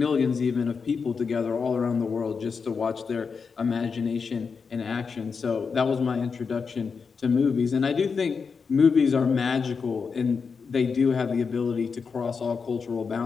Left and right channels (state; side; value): quieter; right; 5.5 dB